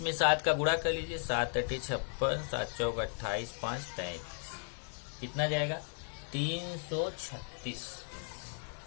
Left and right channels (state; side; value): silent; right; 54 dB below the other